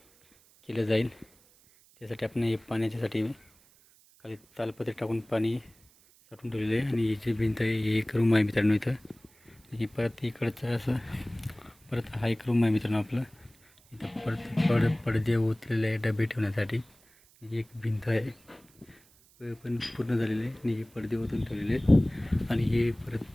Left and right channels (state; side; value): noise; right; hiss, 29 dB below the sound